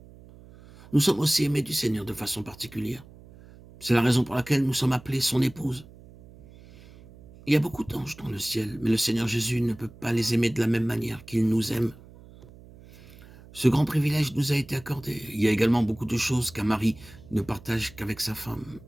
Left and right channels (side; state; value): right; noise; hum, 21 dB below the sound